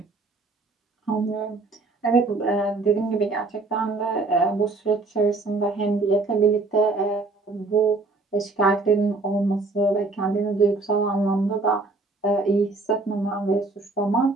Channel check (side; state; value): left; quieter; 3.6 dB